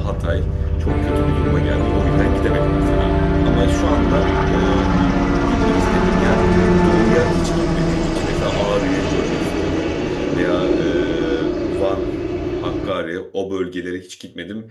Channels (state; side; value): identical; both; correlation 1.00